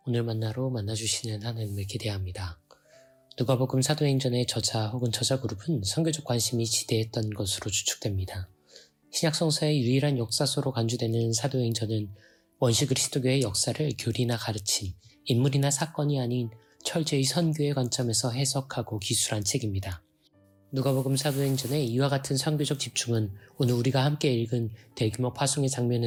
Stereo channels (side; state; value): both; identical; correlation 1.00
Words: 오늘 만나로 만나주시는 하나님을 기대합니다. 누가복음 사도행전의 저자 혹은 저자 그룹은 선교적 관심이 지대했던 것으로 추측됩니다. 신약성서의 유일한 역사서로 간주되는 사도행전은 원시 그리스도교의 역사를 교리나 가르침, 인물이나 사건이 아닌 철저히 선교의 관점에서 해석하고 기술한 책입니다. 누가복음 사도행전의 이와 같은 선교적 집중은 오늘 우리가 함께 읽은 대규모 파송의